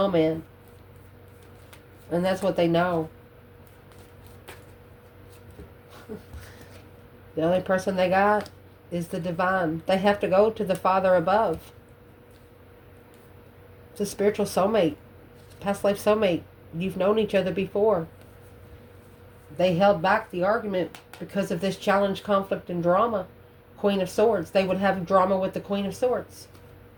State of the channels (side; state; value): both; identical; correlation 1.00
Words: And that's what they know. The only person they got is the Divine. They have to go to the Father above. It's a spiritual soulmate. Past life soulmate. You've known each other before. They held back the argument because of this challenge, conflict, and drama. Queen of Swords. They would have drama with the Queen of Swords.